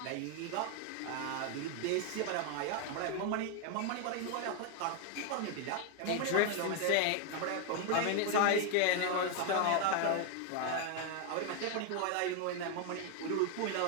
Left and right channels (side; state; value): both; different; correlation 0.01